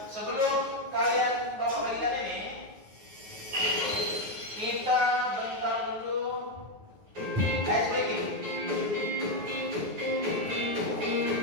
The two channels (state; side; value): late; left; 9.3 ms